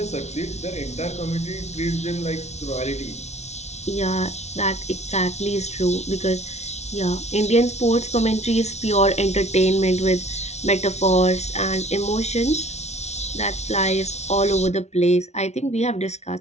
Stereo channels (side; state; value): right; late; 0.32 ms